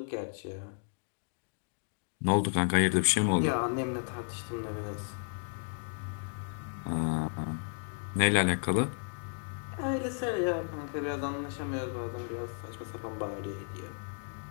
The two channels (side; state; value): right; silent; digital silence